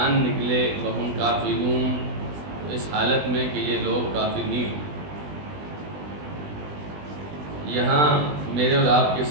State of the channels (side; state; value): left; late; 20 ms